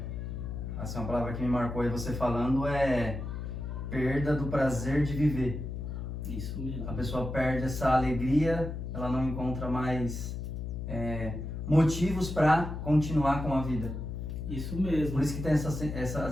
assim, uma palavra que me marcou aí você falando é perda do prazer de viver. Isso mesmo. A pessoa perde essa alegria, ela não encontra mais motivos para continuar com a vida. Isso mesmo. Por isso que tem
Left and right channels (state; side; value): noise; left; hum, 5 dB below the sound